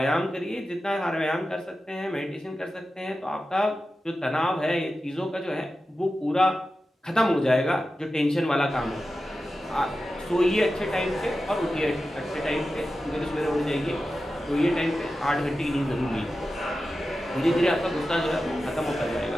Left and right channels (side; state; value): both; normal; correlation 0.93